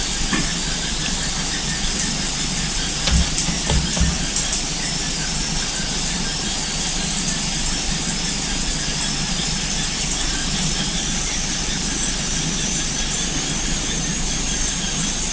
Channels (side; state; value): both; identical; correlation 1.00